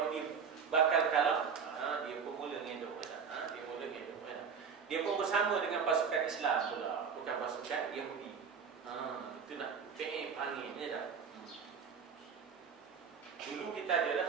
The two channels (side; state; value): left; quieter; 6.4 dB